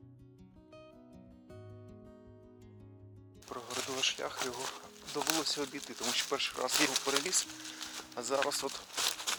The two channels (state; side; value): identical; both; correlation 1.00